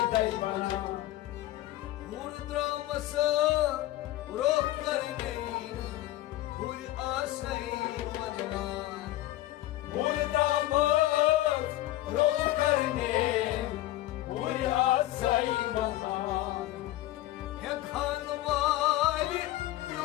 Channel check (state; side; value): quieter; right; 15.7 dB